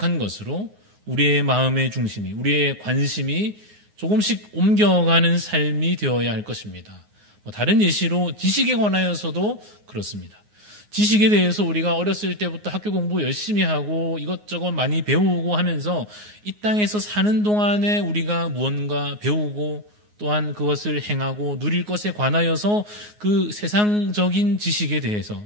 것으로 우리의 마음의 중심이, 우리의 관심이 조금씩 옮겨가는 삶이 되어야 할 것입니다. 다른 예시로 지식에 관하여서도 그렇습니다. 지식에 대해서 우리가 어렸을 때부터 학교 공부 열심히 하고 이것저것 많이 배우고 하면서 이 땅에서 사는 동안에 우리가 무언가 배우고 또한 그것을 행하고 누릴 것에 관하여서 그 세상적인 지식에 대해서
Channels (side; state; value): left; late; 9.6 ms